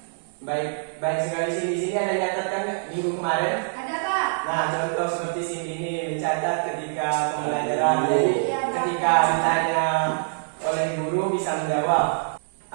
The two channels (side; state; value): left; silent; digital silence